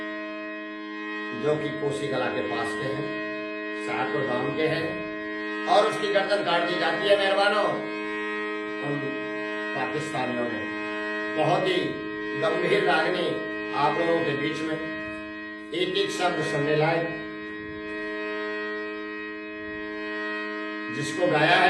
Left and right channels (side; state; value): both; identical; correlation 1.00